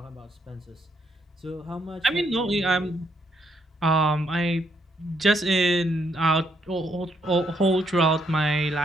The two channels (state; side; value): normal; both; correlation 0.74